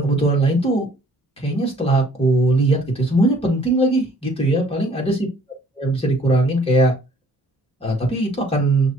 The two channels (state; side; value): normal; both; correlation 0.57